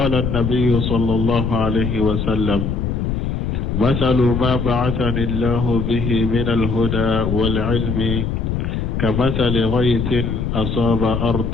النبي صلى الله عليه وسلم: مثل ما بعثني الله به من الهدى والعلم كمثل غيث أصاب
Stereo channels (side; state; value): left; noise; rumble, 1 dB below the sound